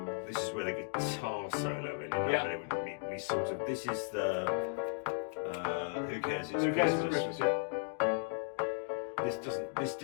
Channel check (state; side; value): silent; right; digital silence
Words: This is where the guitar solo ended up. Yeah. And we sort of. This is the. Who cares? It's Who cares? Christmas. It's Christmas, yeah. This